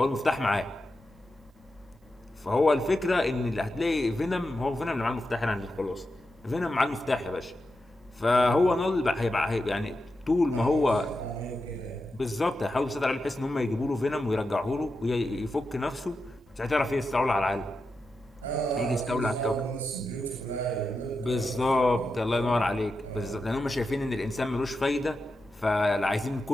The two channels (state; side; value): normal; both; correlation 0.89